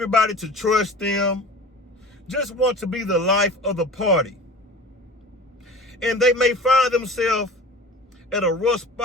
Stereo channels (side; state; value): both; normal; correlation 0.39